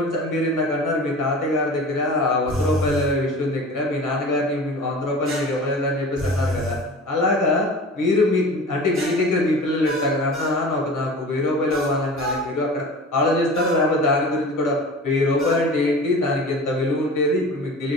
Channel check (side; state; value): both; normal; correlation 0.37